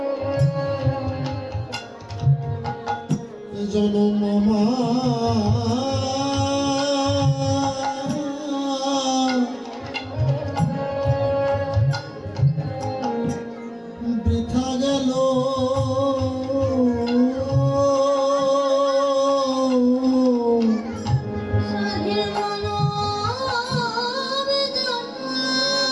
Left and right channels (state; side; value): identical; both; correlation 1.00